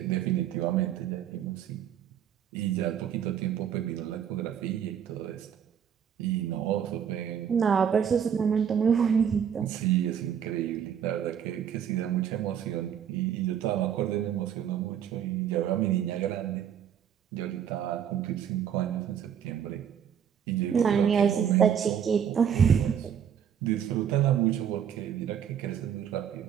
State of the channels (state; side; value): quieter; left; 8.7 dB